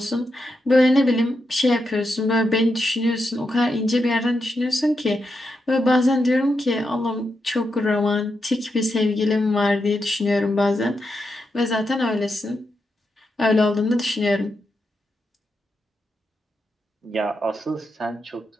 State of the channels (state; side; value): normal; both; correlation 0.85